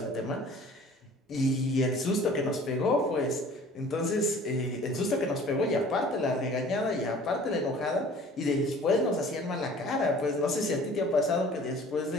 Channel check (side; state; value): both; normal; correlation 0.48